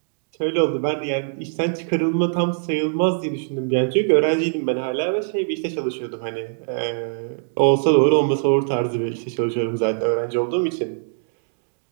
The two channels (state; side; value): silent; left; digital silence